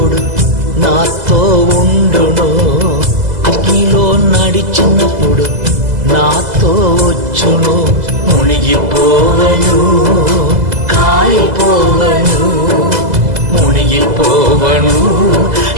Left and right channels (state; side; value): late; left; 2.0 ms